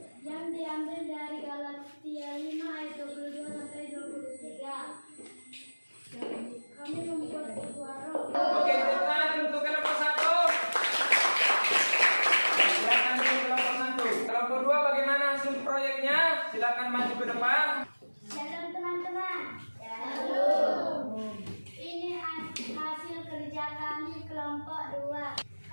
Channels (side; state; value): both; inverted; correlation -1.00